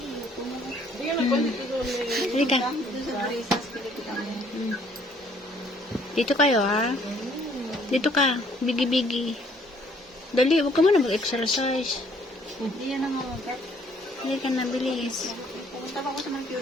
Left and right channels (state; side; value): normal; both; correlation 0.63